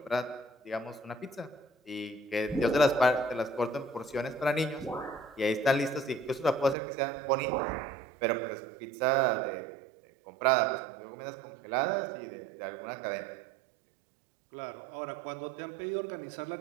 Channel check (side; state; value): left; drops out; at 6.8 s